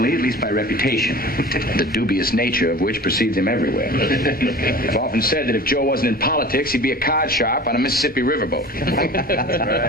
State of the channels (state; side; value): normal; both; correlation 0.39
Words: at least by reputation, the dubious nature of which precedes him everywhere. I've often said that if Joe wasn't in politics, he'd be a card sharp on a Mississippi riverboat.